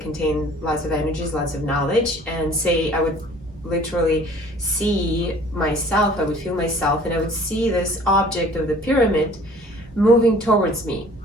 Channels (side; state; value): both; normal; correlation 0.51